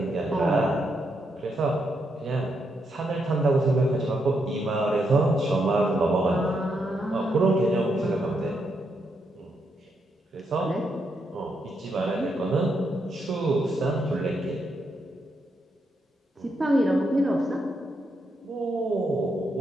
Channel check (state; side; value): normal; both; correlation 0.80